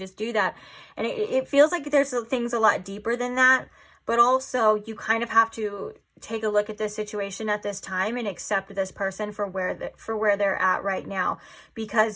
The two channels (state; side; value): identical; both; correlation 1.00